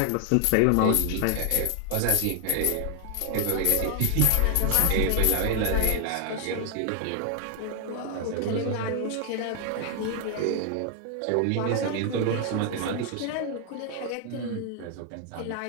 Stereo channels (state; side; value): different; both; correlation 0.00